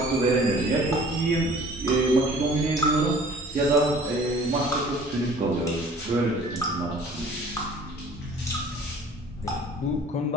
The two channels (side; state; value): both; normal; correlation 0.50